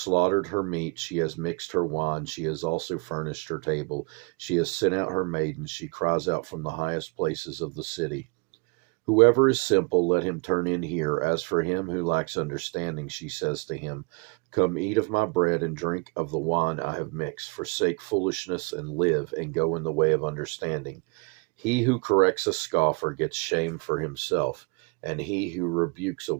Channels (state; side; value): quieter; left; 31.1 dB